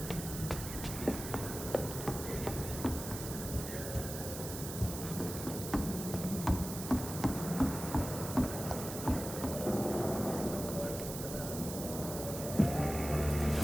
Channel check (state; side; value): noise; right; hiss, 8 dB below the sound